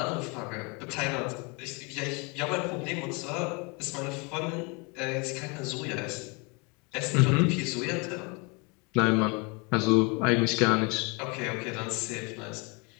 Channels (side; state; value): right; quieter; 30.4 dB